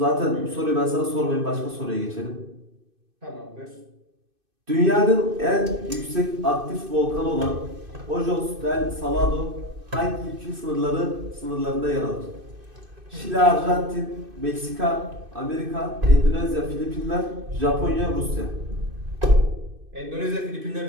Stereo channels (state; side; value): late; left; 2.6 ms